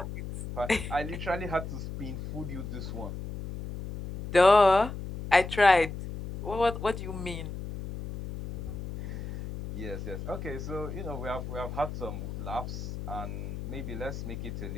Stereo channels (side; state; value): left; noise; hum, 8 dB below the sound